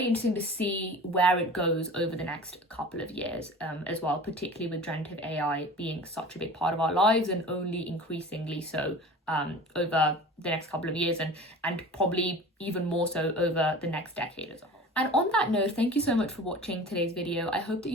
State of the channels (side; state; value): both; normal; correlation 0.39